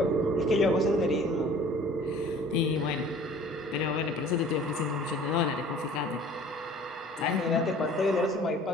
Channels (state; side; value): normal; both; correlation 0.49